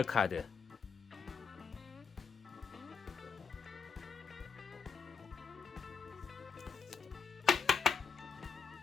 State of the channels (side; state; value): right; quieter; 5.6 dB